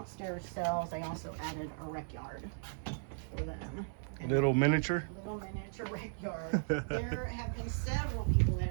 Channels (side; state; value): left; silent; 54 dB below the other